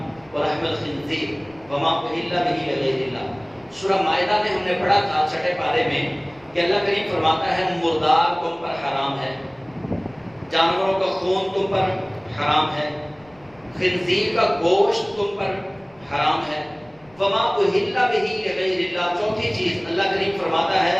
ولحم الخنزیر وما اہل به لغیر اللہ. سورہ مائدہ میں ہم نے پڑھا تھا چھٹے پارے میں کہ اللہ کریم فرماتا ہے مردار تم پر حرام ہے، جانوروں کا خون تم پر حرام ہے، خنزیر کا گوشت تم پر حرام ہے، وما اہل به لغیر اللہ. چوتھی چیز اللہ کریم فرماتا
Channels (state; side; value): noise; left; rumble, 29 dB below the sound